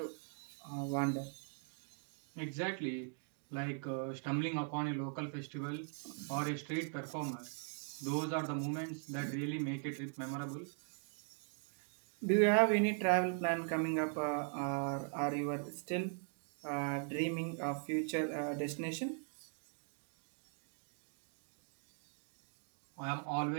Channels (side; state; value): left; silent; 51 dB below the other